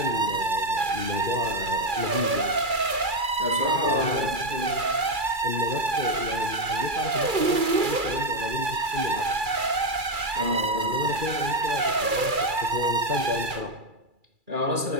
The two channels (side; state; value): left; late; 2.3 ms